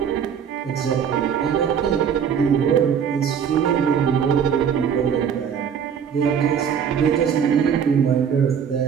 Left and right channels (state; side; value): quieter; left; 7.7 dB